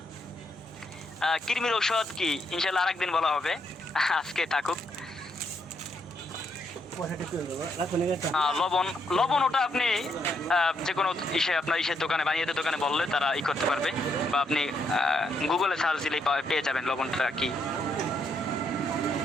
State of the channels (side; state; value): both; normal; correlation 0.76